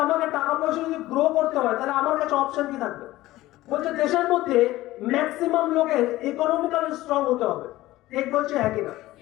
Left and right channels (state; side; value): quieter; right; 16.9 dB